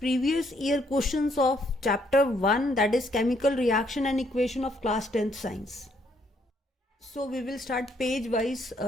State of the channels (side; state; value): both; normal; correlation 0.70